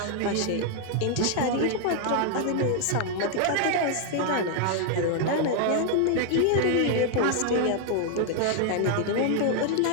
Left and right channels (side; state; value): both; different; correlation 0.00